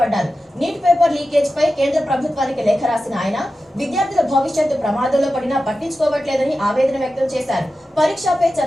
నీట్ పేపర్ లీకేజ్ పై కేంద్ర ప్రభుత్వానికి లేఖ రాసిన ఆయన విద్యార్థుల భవిష్యత్తు ప్రమాదంలో పడినా పట్టించుకోవట్లేదని ఆవేదన వ్యక్తం చేశారు. పరీక్షపై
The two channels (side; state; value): both; normal; correlation 0.93